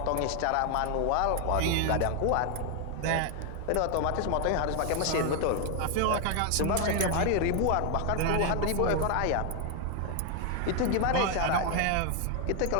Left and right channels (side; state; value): both; different; correlation 0.00